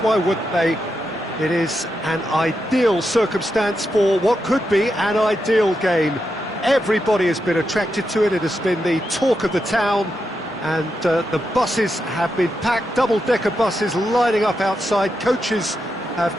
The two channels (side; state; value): both; normal; correlation 0.86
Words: wouldn't they? It is an ideal circumstance for what could be an ideal game. Everybody has been attracted to it. It has been the talk of the town and the buses have been packed, double-decker buses lining up outside. Coaches have